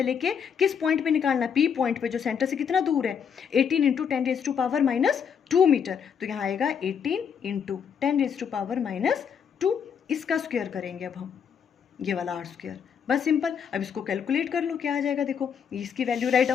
लेके किस पॉइंट पे निकालना है, पी पॉइंट पे, जो सेंटर से कितना दूर है 18 into 10 raise to power -2 metre, तो यहाँ आएगा 18 इंटू 10 रेज टू पावर -2, इसका स्क्वायर करेंगे अब हम, ये वाला आर स्क्वायर, बस सिंपल। अब इसको कैलकुलेट कर लो क्या आ जाएगा, देखो इसकी वैल्यू राइट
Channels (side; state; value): right; quieter; 7.3 dB